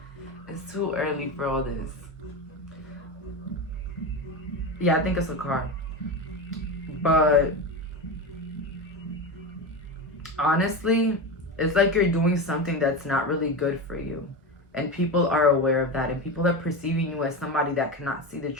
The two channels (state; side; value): normal; both; correlation 0.21